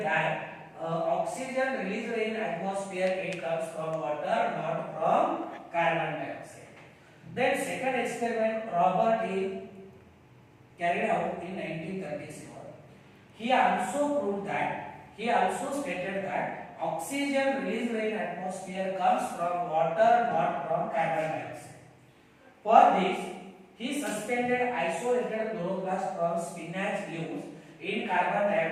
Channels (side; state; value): both; identical; correlation 1.00